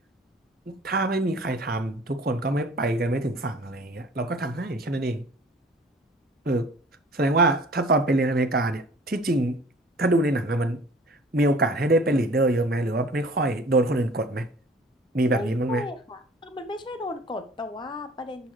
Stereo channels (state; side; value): normal; both; correlation 0.49